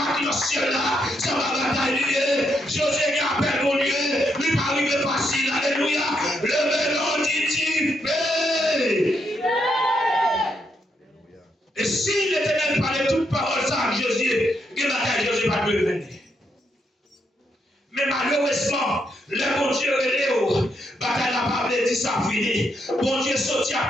qui est au ciel là, ça va batailler. José qui appelle mon Dieu, lui pas arrivé facile. Alléluia. Le vélo dit et si l'Éternel parlait toute parole ça à Josué, que bataille Josué va devenir. Mais malheureusement, le bon Dieu est Léo. Bataille n'a pas dit ça fini. Bon Dieu sorti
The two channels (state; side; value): normal; both; correlation 0.78